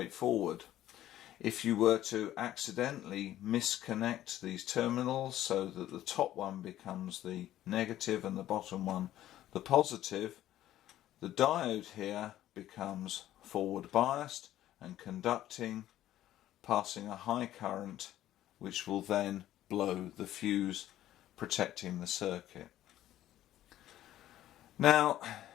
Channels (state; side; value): quieter; right; 13.3 dB